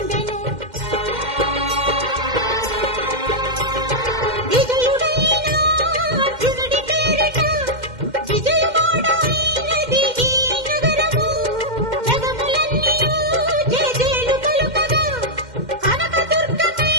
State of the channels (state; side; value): late; left; 2.1 ms